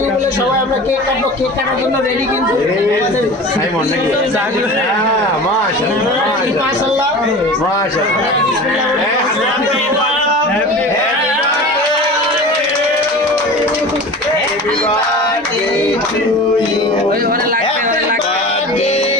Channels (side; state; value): both; normal; correlation 0.35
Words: ইউ বলে সবাই আমরা কেক কাটবো। কেক কাটার জন্য রেডি কিন্তু আমাদের সাইমন নাকি? হ্যাঁ মাশাআল্লাহ মাশাআল্লাহ Happy birthday to you. Happy birthday